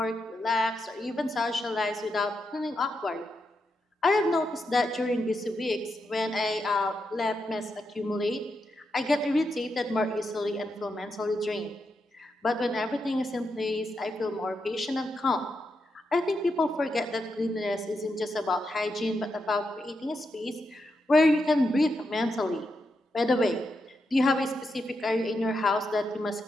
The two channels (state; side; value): normal; both; correlation 0.84